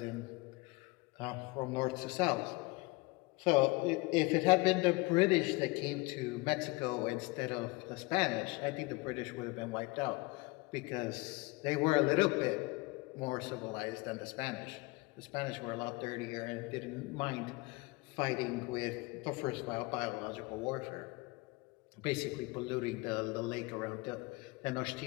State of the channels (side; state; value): right; quieter; 24.4 dB